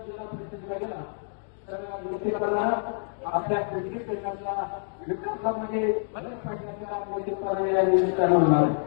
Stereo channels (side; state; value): right; silent; digital silence